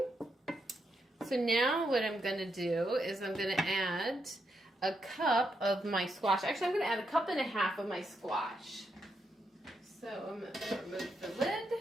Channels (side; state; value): both; normal; correlation 0.81